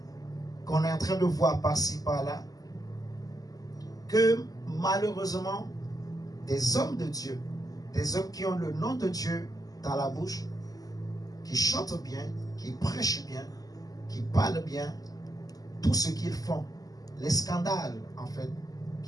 qu'on est en train de voir par-ci par-là, que malheureusement des hommes de Dieu, des hommes qui ont le nom de Dieu dans la bouche, qui chantent bien, qui prêchent bien, qui parlent bien, tout ce qu'ils font, les scandales en fait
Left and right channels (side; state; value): right; late; 0.18 ms